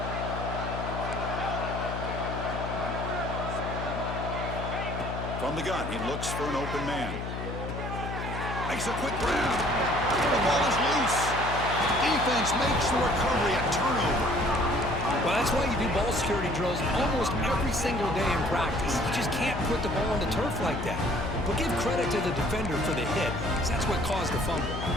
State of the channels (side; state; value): left; noise; hum, 6 dB below the sound